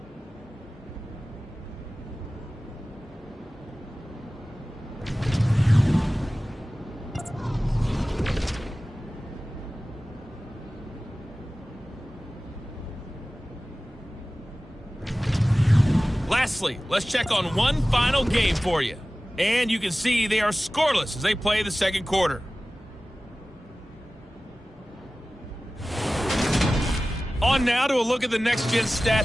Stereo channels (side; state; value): both; normal; correlation 0.97